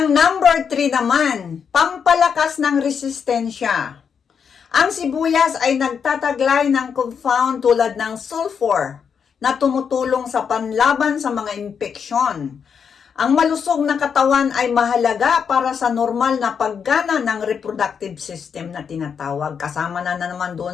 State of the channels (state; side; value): quieter; right; 6.8 dB